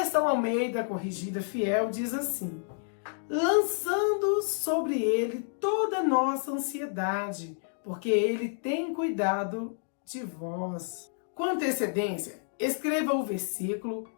Almeida Corrigida Fiel diz assim: lançando sobre Ele toda a nossa ansiedade, porque Ele tem cuidado de vós. Com antecedência, escreva o versículo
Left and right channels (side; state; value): right; silent; digital silence